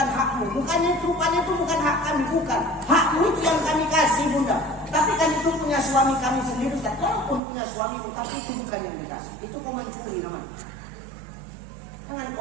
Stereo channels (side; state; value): left; drops out; at 7.4 s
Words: hakmu. Bukannya itu bukan hak kami, bukan. Hakmu itu yang kami kasih bunda. Tapi kan itu punya suami kami sendiri. Kalaupun punya suami, tapi itu bukan yang dikasih. Itu kau mencuri namanya. Jangan